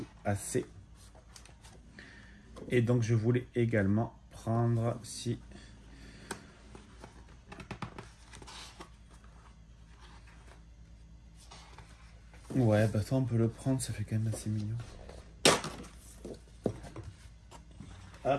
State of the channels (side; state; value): both; identical; correlation 1.00